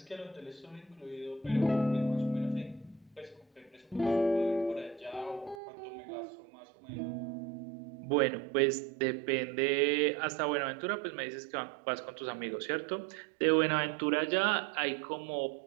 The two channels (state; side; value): drops out; left; at 5.6 s